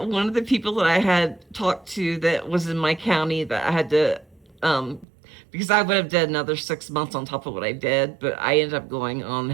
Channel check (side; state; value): left; drops out; at 5.1 s